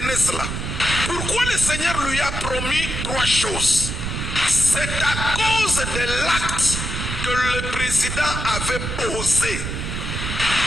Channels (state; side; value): noise; right; rumble, 4 dB below the sound